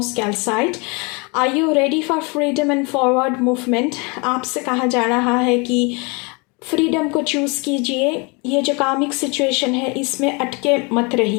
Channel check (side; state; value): right; quieter; 30.0 dB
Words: calcite. Are you ready for freedom and forward movement. आपसे कहा जा रहा है कि फ्रीडम को चूज़ कीजिए। ये जो कामिक सिचुएशन है इसमें अटके मत